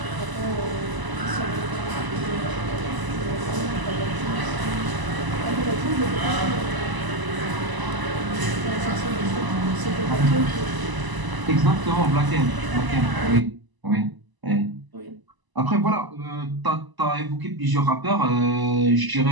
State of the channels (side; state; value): left; late; 1.0 ms